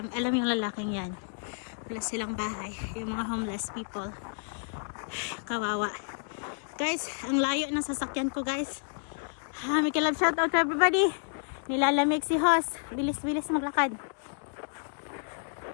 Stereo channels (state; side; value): silent; right; 58 dB below the other